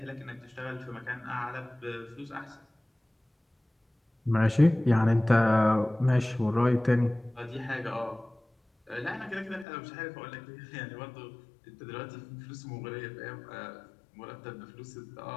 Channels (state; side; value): drops out; right; at 9.7 s